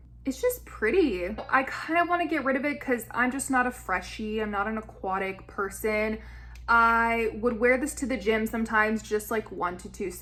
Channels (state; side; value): identical; both; correlation 1.00